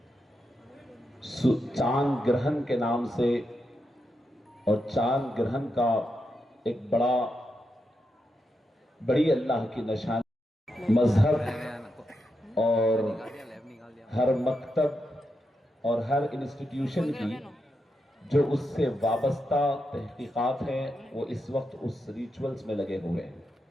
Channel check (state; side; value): normal; both; correlation 0.85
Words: چاند گرہن کے نام سے اور چاند گرہن کا ایک بڑی اللہ کی نشانی، مذہب اور ہر مکتب اور ہر انسٹیٹیوشن کی جو اس سے وابستہ تحقیقات ہیں وہ اس وقت اس ریچولز میں لگے ہوئے ہیں۔